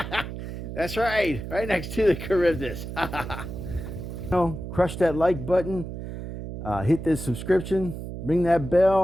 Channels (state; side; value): noise; right; hum, 8 dB below the sound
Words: That's right. Right next to the Charybdis. Crush that like button. Hit this subscription. Ring that